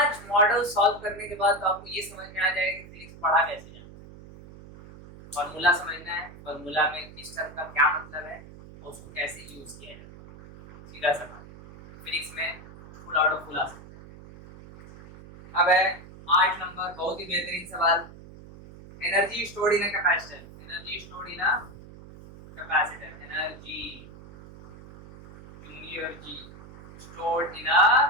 model solve करने के बाद तो आपको ये समझ में आ जाएगा कि फिजिक्स पढ़ा कैसे जाना है। फॉर्मूला समझना है, फॉर्मूला में किस टर्म का क्या मतलब है और उसको कैसे यूज किया जाता है, सीधा सा बात। फिजिक्स में फुल आउट ऑफ फुल आ सकता है। अब है 8 नंबर, बहुत ही बेहतरीन सवाल। Energy stored in a capacitor, energy stored in a capacitor, energy stored in a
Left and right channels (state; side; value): noise; right; hum, 18 dB below the sound